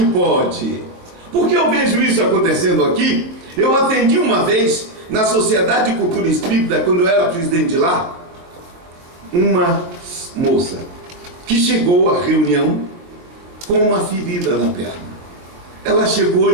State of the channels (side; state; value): left; late; 23 ms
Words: pode. Porque eu vejo isso acontecendo aqui. Eu atendi uma vez na Sociedade de Cultura Espírita, quando eu era presidente de lá, uma moça que chegou à reunião com uma ferida na perna. Ela chegou